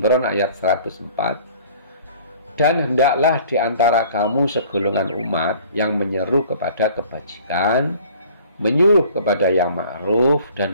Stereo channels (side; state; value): both; inverted; correlation -0.52